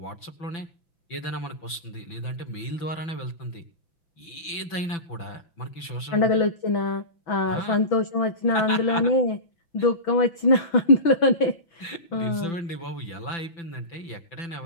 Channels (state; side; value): late; right; 6.0 ms